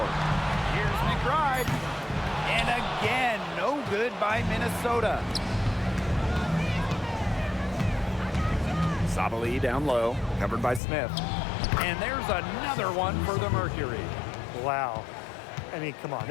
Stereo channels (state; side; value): drops out; right; at 10.8 s